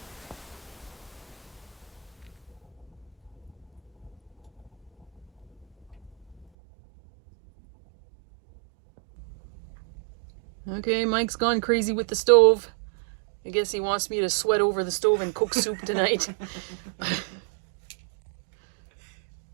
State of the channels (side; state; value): left; drops out; at 6.5 s